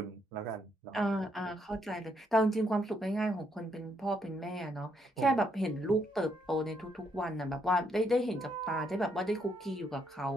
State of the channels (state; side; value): normal; both; correlation 0.74